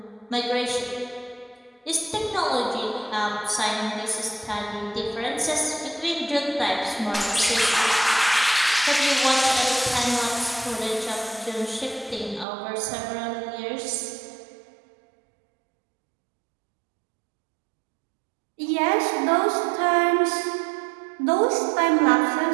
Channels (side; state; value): left; drops out; at 12.5 s